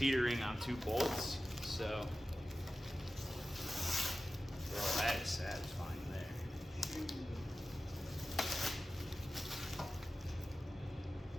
on 2 bolts. So, well, that is satisfying there.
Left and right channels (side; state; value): both; normal; correlation 0.95